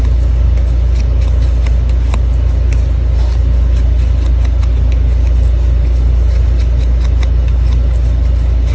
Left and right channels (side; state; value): both; identical; correlation 1.00